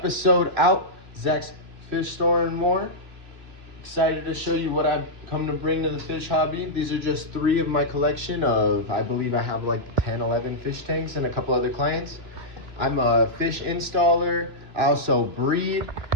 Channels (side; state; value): left; late; 2.9 ms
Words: out, Zach's Fish Store and More. Excited to show you what I've come to bring to the fish hobby. These are just 3 of my collection of, I believe I have like 10, 11 fish tanks and a couple other clients. I'm a fish installer, I also breed,